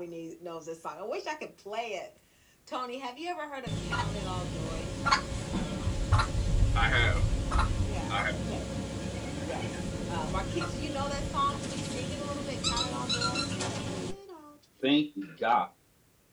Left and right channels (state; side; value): identical; both; correlation 1.00